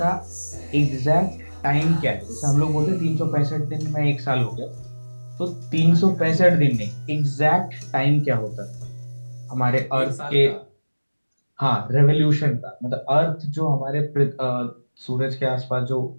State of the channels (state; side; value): inverted; both; correlation -1.00